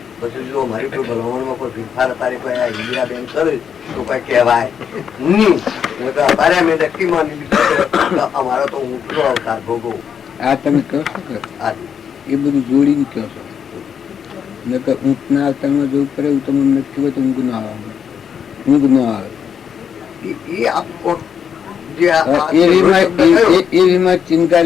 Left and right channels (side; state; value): right; quieter; 7.7 dB